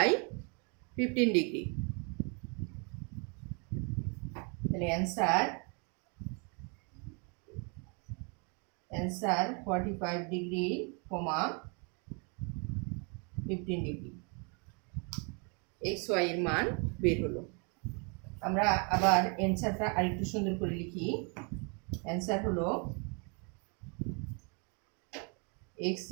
y 15 ডিগ্রি। তাহলে answer 45 degree, 15 degree x y এর মান বের হলো। আমরা আবার অ্যান্সারটা আরেকটু সুন্দর করে লিখি। অ্যান্সার হলো x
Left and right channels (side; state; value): left; quieter; 34.9 dB